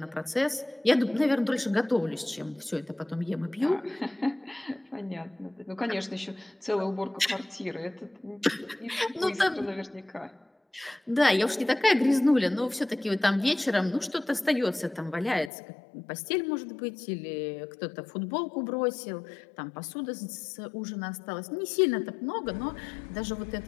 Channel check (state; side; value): drops out; right; at 15.5 s